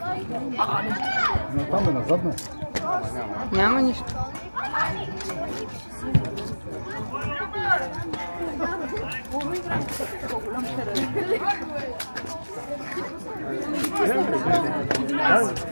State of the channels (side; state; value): both; inverted; correlation -1.00